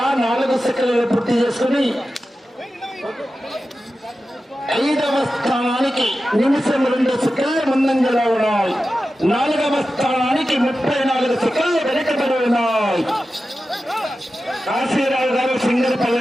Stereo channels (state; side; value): normal; both; correlation 0.93